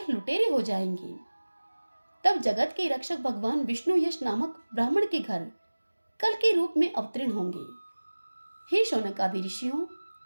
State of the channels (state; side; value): inverted; both; correlation -1.00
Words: लुटेरे हो जाएंगे, तब जगत के रक्षक भगवान विष्णु यश नामक ब्राह्मण के घर कल के रूप में अवतीर्ण होंगे। हे शौनक आदि ऋषियों,